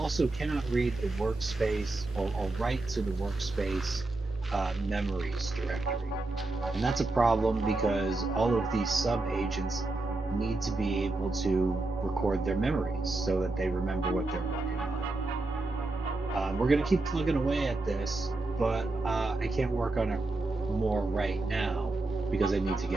cannot read the workspace or write to the workspace memories directory. And that's a problem because all of these sub agents need to be able to record their memories so that they remember what they're working on. We're going to keep plugging away at this, but I can't work on it more right now because I need to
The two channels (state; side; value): quieter; left; 3.1 dB